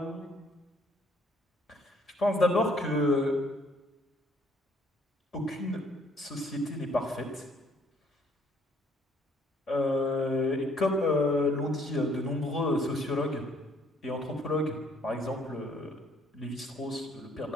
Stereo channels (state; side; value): normal; both; correlation 0.64